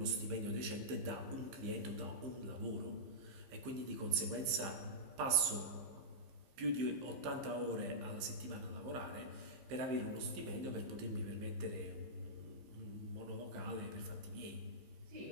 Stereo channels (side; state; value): left; late; 15 ms